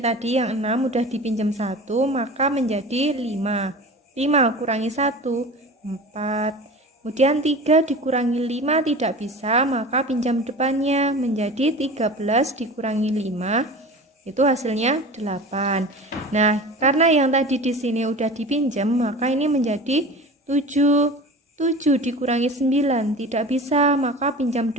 tadi yang 6 udah dipinjam 1, maka menjadi 5. 5 kurangi 1, 4. Kemudian 3 dikurangi 5 tidak bisa, maka pinjam depannya menjadi 13 dikurangi 5, itu hasilnya 8. Nah, karena yang tadi di sini udah dipinjam, maka ini menjadi 7. 7 dikurangi 9 tidak bisa, maka pinjam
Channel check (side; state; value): both; normal; correlation 0.35